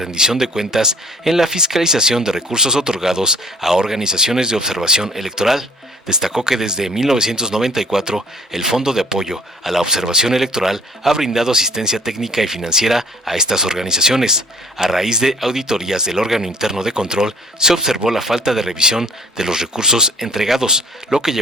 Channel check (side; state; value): both; normal; correlation 0.52